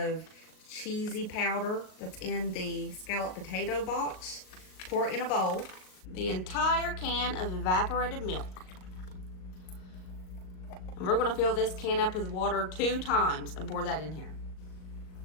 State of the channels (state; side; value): late; right; 38 ms